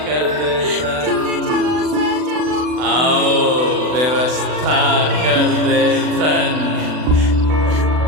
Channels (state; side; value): late; left; 40 ms